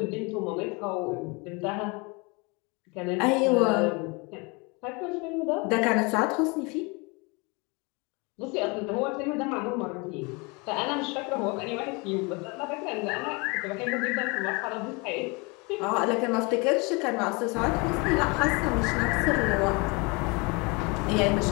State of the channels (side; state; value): right; quieter; 28.7 dB